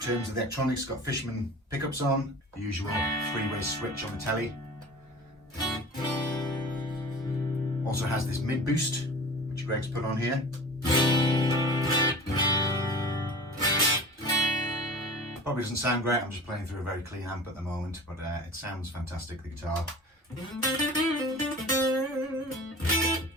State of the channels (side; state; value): both; normal; correlation 0.37